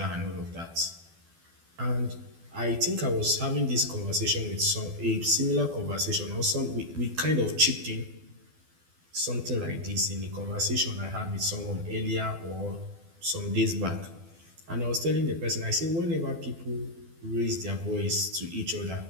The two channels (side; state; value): left; late; 12 ms